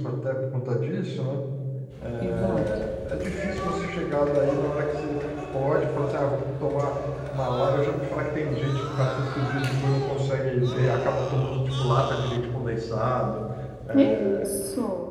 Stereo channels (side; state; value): both; identical; correlation 1.00